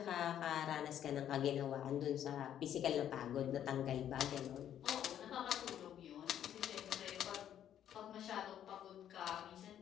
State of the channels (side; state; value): right; quieter; 10.3 dB